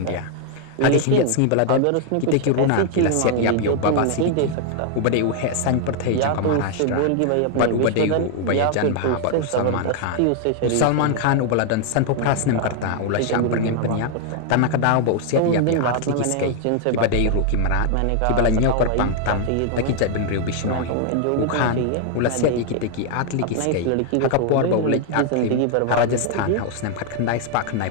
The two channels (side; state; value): both; different; correlation 0.00